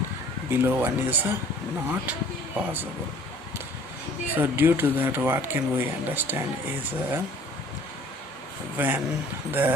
below 1 is not possible. So due to that, what can we understand is when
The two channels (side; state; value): both; normal; correlation 0.53